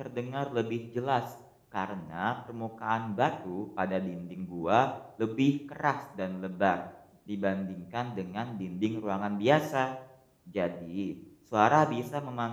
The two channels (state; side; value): identical; both; correlation 1.00